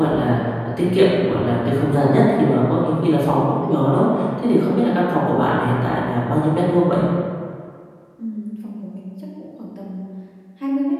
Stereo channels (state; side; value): identical; both; correlation 1.00